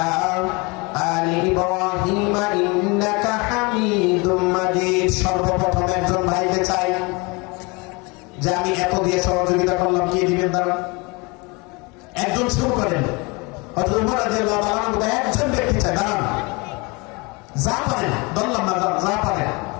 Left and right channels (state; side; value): quieter; right; 27.6 dB